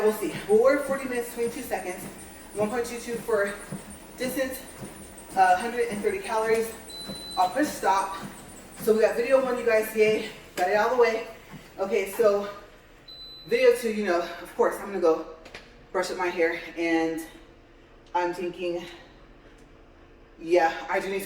we'll see. We'll work 40 minutes, 22 seconds, 1.22 for distance, 130 calories. I'll push stop. So we got video 1, you guys, yay, got it out of the way. Okay, so video 2, you know, of course, I'm gonna go brush up my hair, and I'm thinking, yeah, I do need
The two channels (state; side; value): identical; both; correlation 1.00